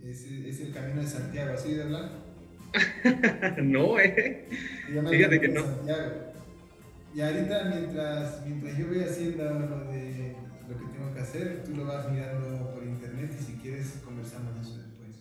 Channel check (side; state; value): both; identical; correlation 1.00